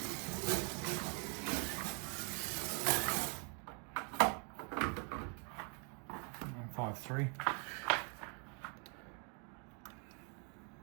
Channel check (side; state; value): left; quieter; 36.0 dB